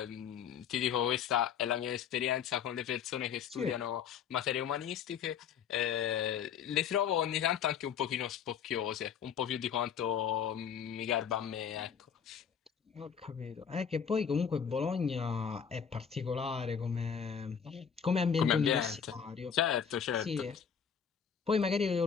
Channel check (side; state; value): right; quieter; 7.5 dB